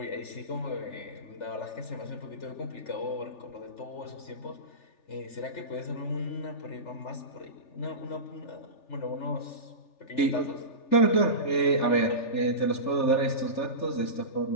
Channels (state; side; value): late; right; 3.4 ms